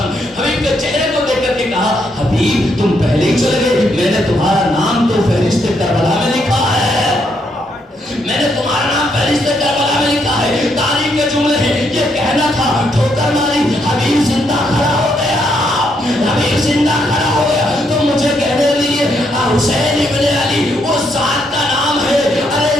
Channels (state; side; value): normal; both; correlation 0.76